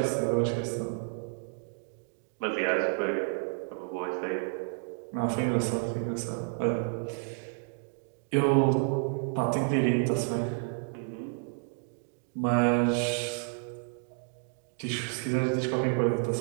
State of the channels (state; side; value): silent; left; 57 dB below the other